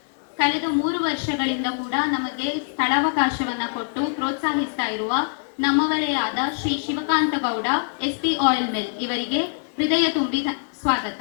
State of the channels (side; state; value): right; silent; 63 dB below the other